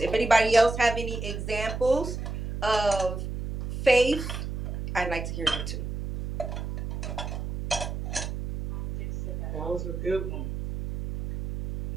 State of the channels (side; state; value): right; noise; hum, 5 dB below the sound